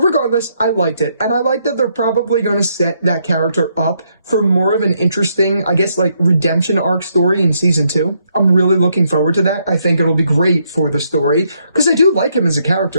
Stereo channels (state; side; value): inverted; both; correlation -0.74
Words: I liked it. And I like that they're probably going to set that character up for more of an interesting, I guess, like, redemption arc story in season 2. I'm really looking forward to that. I think it'll be great for the story, because I do like him as a